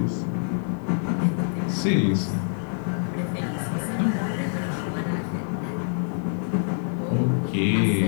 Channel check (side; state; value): right; silent; digital silence